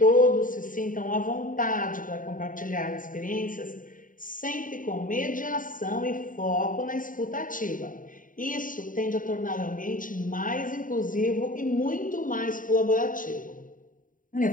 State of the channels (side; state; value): right; late; 0.39 ms